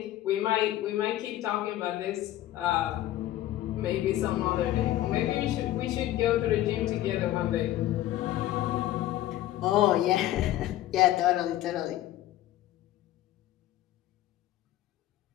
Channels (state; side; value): quieter; right; 14.2 dB